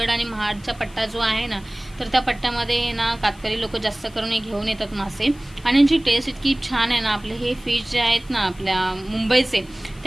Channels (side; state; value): left; noise; hiss, 25 dB below the sound